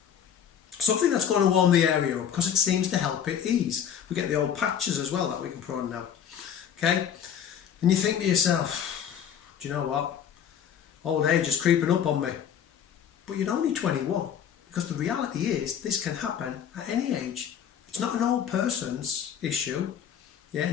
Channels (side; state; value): right; quieter; 8.6 dB